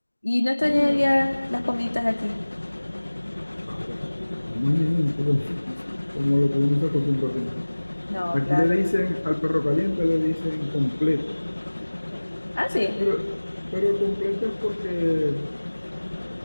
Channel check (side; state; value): both; inverted; correlation -1.00